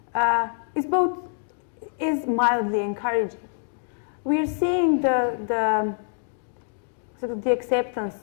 is mildly encouraging. We are seeing the sort of the acceptance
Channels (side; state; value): right; silent; digital silence